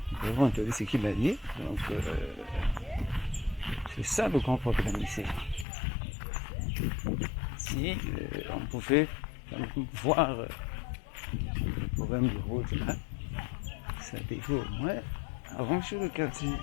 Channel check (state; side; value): drops out; right; at 5.7 s